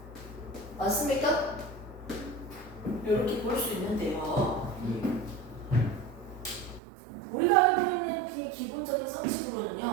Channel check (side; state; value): left; drops out; at 6.8 s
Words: 맞습니까? 이렇게 볼 수 있는데요. 우리가 알고 있는 기본적인